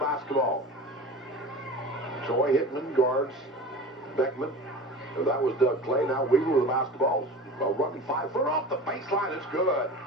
Troy Hickman guards Beckman. So that was Doug Clay. Now Weaver with the basketball. A running 5-footer off the baseline. It's good.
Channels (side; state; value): both; normal; correlation 0.35